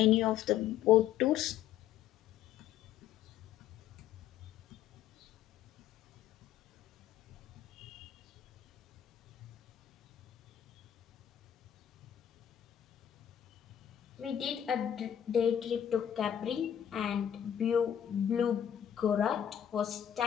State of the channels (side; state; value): right; quieter; 10.1 dB